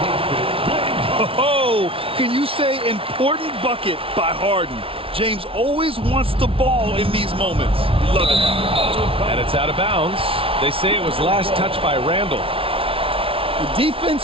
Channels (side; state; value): left; late; 0.26 ms